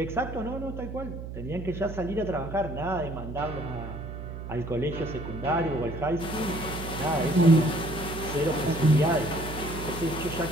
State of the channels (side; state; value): right; noise; hum, 8 dB below the sound